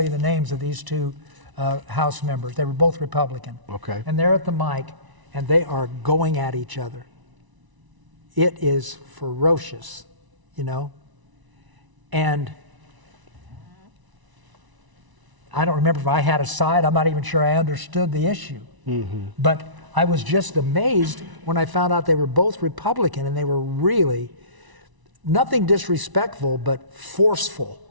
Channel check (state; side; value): late; left; 1.0 ms